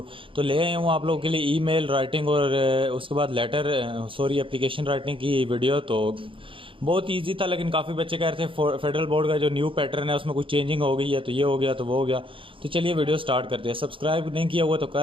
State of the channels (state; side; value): late; left; 0.25 ms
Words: तो ले आया हूँ आप लोगों के लिए ईमेल राइटिंग और उसके बाद लेटर एप्लीकेशन राइटिंग की वीडियो। तो बहुत इजी था, लेकिन काफ़ी बच्चे कह रहे थे फेडरल बोर्ड का जो न्यू पैटर्न है उसमें कुछ चेंजिंग हो गई है, तो ये हो गया तो वो हो गया। तो चलिए वीडियो स्टार्ट करते हैं। सब्सक्राइब नहीं किया हुआ तो